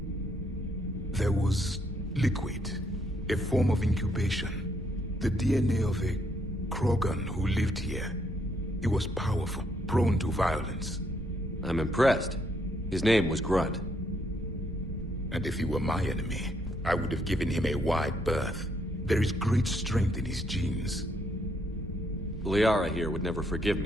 There was liquid, a form of incubation. The DNA of a Krogan who lived here. He was powerful, prone to violence. I'm impressed. His name was Grunt. And if he were my enemy, I would have given him a wide berth. There is great strength in his genes. Liara here would never forgive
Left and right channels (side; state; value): both; normal; correlation 0.72